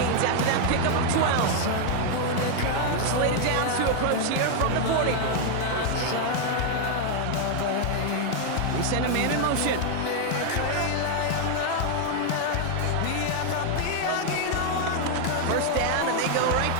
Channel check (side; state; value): both; different; correlation 0.00